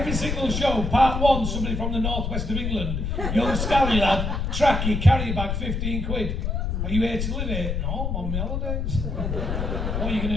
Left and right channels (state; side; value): noise; left; rumble, 1 dB below the sound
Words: single show. Part one, somebody from the northwest of England, young scally lad, tracky, carry bag, 15 quid. Are you here to live here? No, I'm on my holidays. What are you